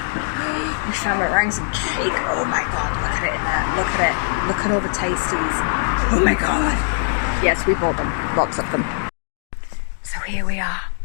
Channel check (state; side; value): silent; right; digital silence